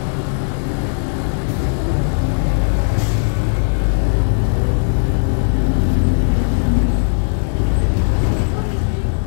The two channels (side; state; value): right; silent; digital silence